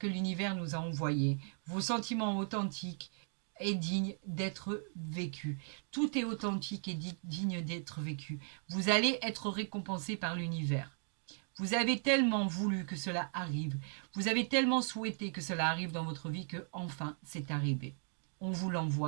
l'univers nous a envoyée, vos sentiments authentiques et dignes d'être vécus. Tout est authentique et digne d'être vécu. Vous allez être récompensé par l'univers. Vous avez tellement voulu que cela arrive. Vous avez tellement souhaité que cela arrive dans votre vie que enfin c'est arrivé. On vous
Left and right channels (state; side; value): silent; left; 53 dB below the other